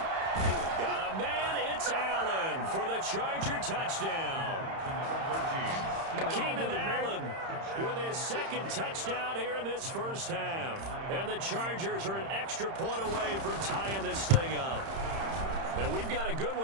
Got a man, it's Allen for the Charger touchdown. Keenan Allen with his second touchdown here in this first half. And the Chargers are an extra point away from tying this thing up. And we've got a good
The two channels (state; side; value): late; left; 31 ms